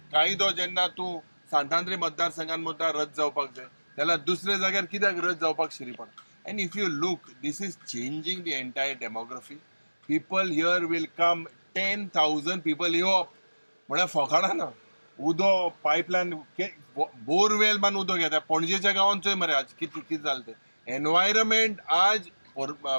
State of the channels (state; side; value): inverted; both; correlation -1.00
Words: कायदो जेन्ना तूं सांतांद्री मतदारसंघात मतदार रद्द जावपाक जाय जाल्यार दुसऱ्या जाग्यार कित्याक रद्द जावपाक शिरी पडटा. And if you look this is changing the entire demography. People here will come 10,000 people येवप म्हळ्यार फकाणां ना. उदो पायपलायन बोरवेल मान उदो घेता पणजेच्या गांवांत चोय मरे आज कितें जालें तें. एनवायरमेंट आज